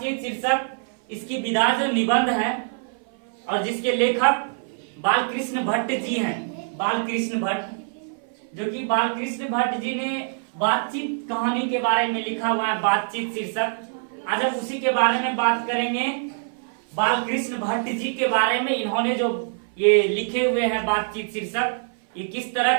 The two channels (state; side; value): silent; left; 56 dB below the other